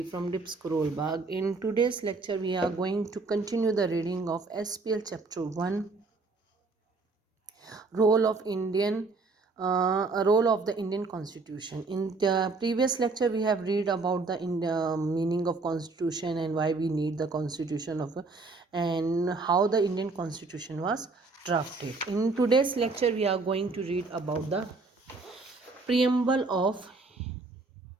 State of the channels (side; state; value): left; quieter; 3.8 dB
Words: from Dips Bag. In today's lecture, we are going to continue the reading of SPL Chapter 1, Role of Role of the Indian Constitution. In the previous lecture, we have read about the meaning of Constitution and why we need the Constitution and how the Indian Constitution was drafted. In today's lecture, we are going to read about the preamble of